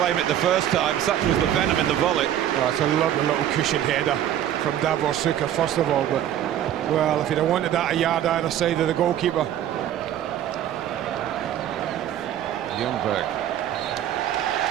it the first time. Such was the venom in the volley. Oh, it's a lovely little cushioned header from Davor Šuker, first of all, but, well, if he'd have wanted that a yard either side of the goalkeeper. Ljungberg.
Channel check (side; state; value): left; quieter; 11.1 dB